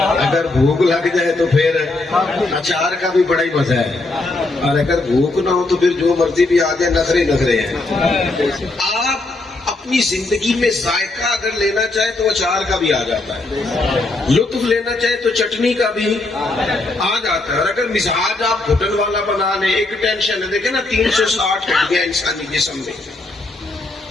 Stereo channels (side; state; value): right; quieter; 3.0 dB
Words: اگر بھوک لگ جائے تو پھر اچار کا بھی بڑا ہی مزہ ہے، اور اگر بھوک نہ ہو تو پھر جو مرضی بھی آ جائے، نخرے ہیں۔ آپ اپنی زندگی میں ذائقہ اگر لینا چاہے تو اچار کا بھی آ جاتا ہے، لطف لینا چاہے تو چٹنی کا بھی آ جاتا ہے، اور اگر مزاج آپ گھٹن والا بنا لیں، ایک ٹینشن ہے، دیکھیں نا 360 ہڈیاں انسانی جسم میں،